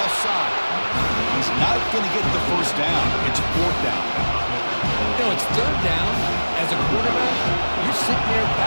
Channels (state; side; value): inverted; both; correlation -1.00